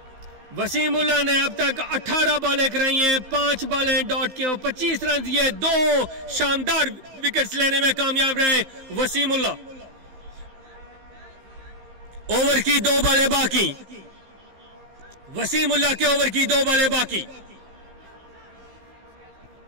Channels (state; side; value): late; left; 16 ms